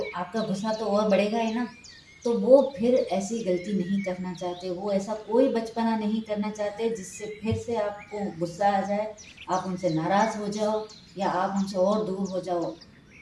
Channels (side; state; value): both; identical; correlation 1.00